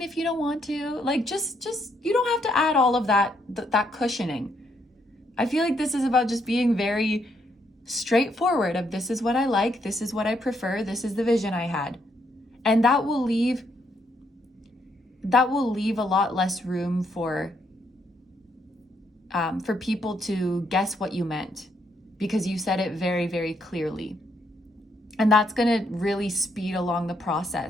if you don't want to. Like, just you don't have to add all of that cushioning. I feel like this is about just being very straightforward of this is what I like, this is what I prefer, this is the vision I had. And that will leave a lot less room for people to guess what you meant, because you said it very, very clearly. And that's going to really speed along the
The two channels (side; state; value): both; normal; correlation 0.74